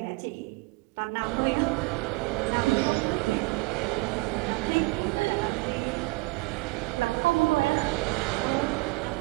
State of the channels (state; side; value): quieter; left; 24.1 dB